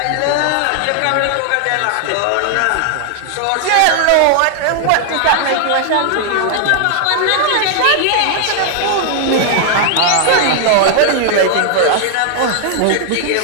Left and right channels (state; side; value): different; both; correlation 0.00